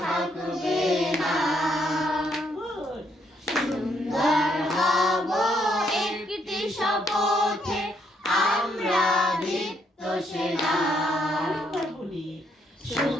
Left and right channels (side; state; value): both; normal; correlation 0.73